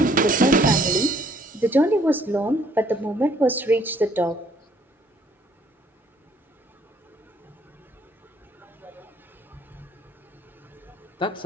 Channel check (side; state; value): both; normal; correlation 0.64